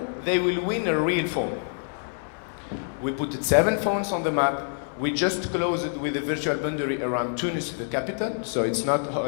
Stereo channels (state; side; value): silent; right; 60 dB below the other